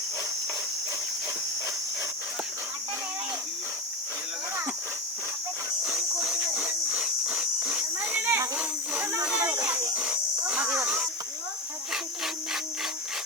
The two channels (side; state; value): both; normal; correlation 0.22